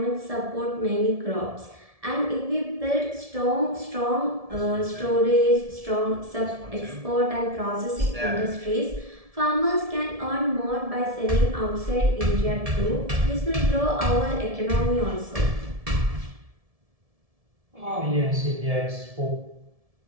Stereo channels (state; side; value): late; left; 1.7 ms